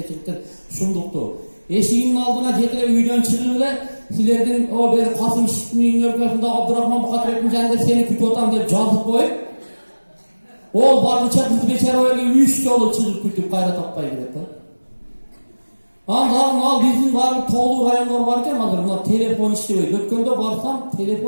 çıktı, şunduktu. Eşiginin aldına jetire üydön çıkıp ele, sizlerden o bir Kasım Şişli'nin örgüsünde Abdurrahman Bukatreb'in janında seni kütüp otam dep жазып koyup, ol barlıça kız beçer öyle 3 yolu çıkıp kütüp kayra tappay gidet. Al bizim var toğlu rayonlar varken hazır buna telefon işlebeydi. Ötkönde barsam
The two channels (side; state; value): both; inverted; correlation -1.00